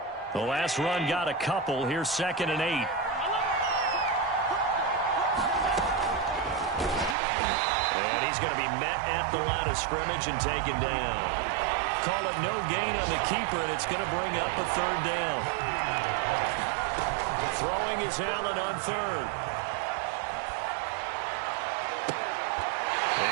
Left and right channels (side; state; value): left; drops out; at 7.2 s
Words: The last run got a couple. Here's 2nd and 8. And he's going to be met at the line of scrimmage and taken down. Call it no gain on the keeper, and it's going to bring up a 3rd down. Throwing is Allen on 3rd.